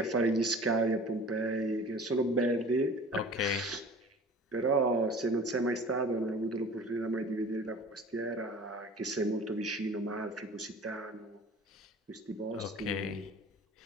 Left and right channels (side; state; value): both; normal; correlation 0.43